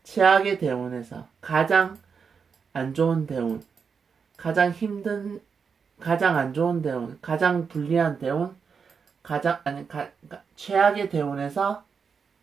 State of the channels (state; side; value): quieter; left; 5.9 dB